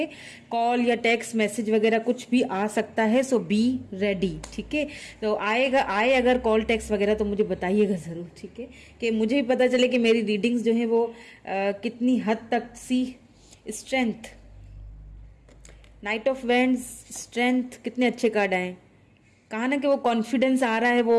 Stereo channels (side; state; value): both; identical; correlation 1.00